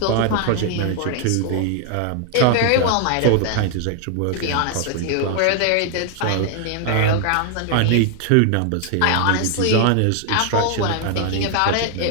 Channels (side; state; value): both; different; correlation 0.00